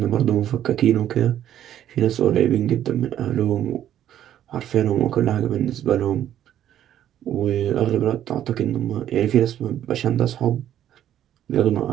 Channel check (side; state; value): left; quieter; 11.1 dB